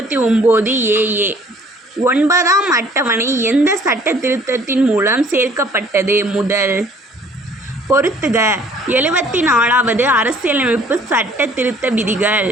AA. 9ஆம் அட்டவணை எந்த சட்ட திருத்தத்தின் மூலம் சேர்க்கப்பட்டது? முதல். பொறுத்துக. 74வது அரசியலமைப்பு சட்ட திருத்த விதிகள்.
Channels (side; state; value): both; normal; correlation 0.57